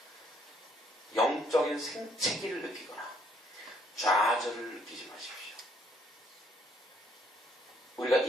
영적인 생채기를 느끼거나 좌절을 느끼지 마십시오. 우리가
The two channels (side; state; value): both; normal; correlation 0.67